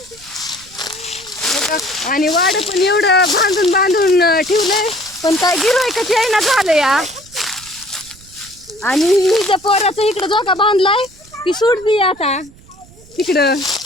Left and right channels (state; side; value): noise; right; rumble, 24 dB below the sound